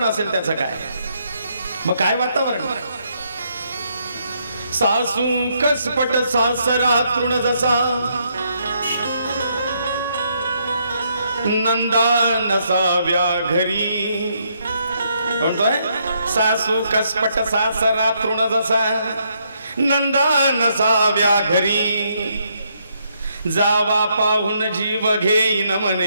असेल त्याचं काय? मग काय वातावरण? सासू कसपट सासरा तृण जसा, नंदा नसाव्या घरी. म्हणतोय सासू कसपट सासरा तृण जसा, नंदा नसाव्या घरी. जावा पाहून जीव घेईन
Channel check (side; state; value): both; inverted; correlation -0.74